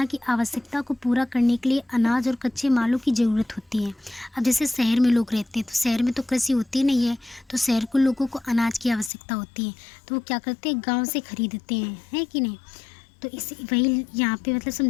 की आवश्यकता को पूरा करने के लिए अनाज और कच्चे मालों की ज़रूरत होती है। अब जैसे शहर में लोग रहते हैं तो शहर में तो कृषि होती नहीं है, तो शहर के लोगों को अनाज की आवश्यकता होती है, तो वो क्या करते हैं गाँव से खरीदते हैं, है कि नहीं। तो इसी वही यहाँ पे मतलब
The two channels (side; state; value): right; drops out; at 9.1 s